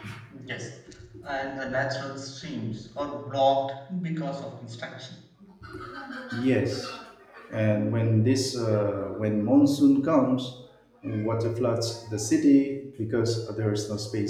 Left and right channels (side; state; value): both; identical; correlation 1.00